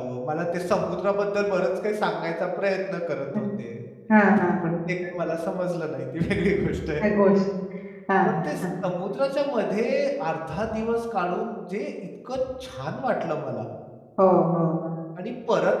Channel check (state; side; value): identical; both; correlation 1.00